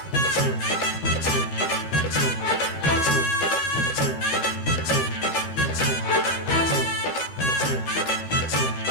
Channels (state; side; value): late; right; 13 ms